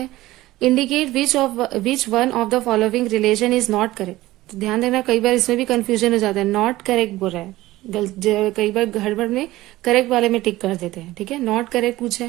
indicate which one of the following relation is not correct. तो ध्यान देना, कई बार इसमें भी कंफ्यूजन हो जाता है, नॉट करेक्ट बोल रहा है, कई बार गड़बड़ में करेक्ट वाले में टिक कर देते हैं, ठीक है, नॉट करेक्ट पूछा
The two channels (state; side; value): quieter; left; 17.3 dB